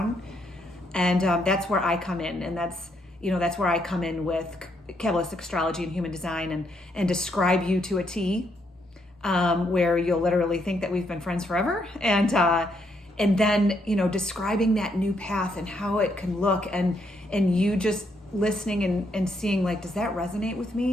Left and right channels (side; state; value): both; normal; correlation 0.75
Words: And that's where I come in. And that's where I come in with Kabbalistic astrology and human design, and describe you to a T, where you'll literally think that we've been friends forever. And then, describing that new path and how it can look, and you just listening and seeing, like, does that resonate with